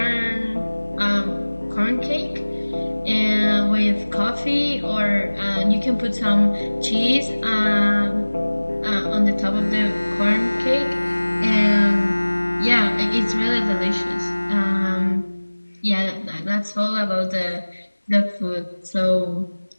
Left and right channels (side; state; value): both; inverted; correlation -1.00